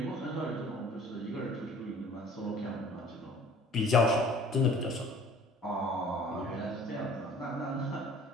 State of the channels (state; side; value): normal; both; correlation 0.50